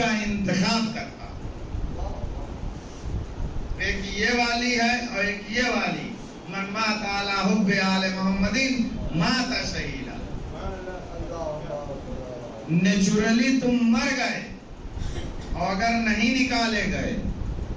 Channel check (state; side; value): identical; both; correlation 1.00